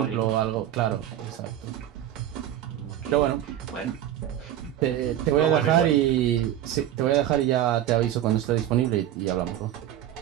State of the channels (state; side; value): quieter; left; 11.9 dB